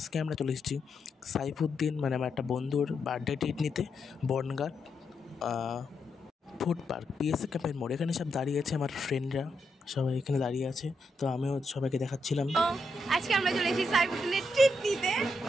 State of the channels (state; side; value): normal; both; correlation 0.82